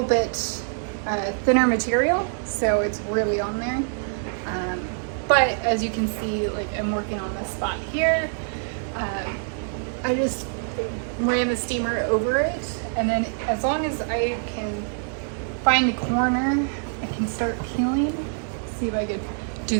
bit thinner material, so it's really on there. But as you can see, like I'm working on this spot here. I just ran the steamer over it, and then as long as I can find the corner, I can start peeling. See if I could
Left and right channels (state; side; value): silent; left; digital silence